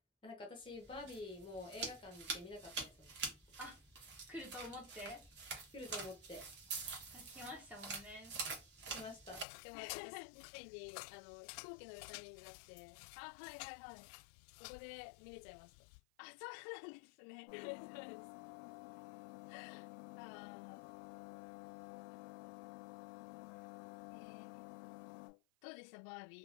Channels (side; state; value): right; drops out; at 9.5 s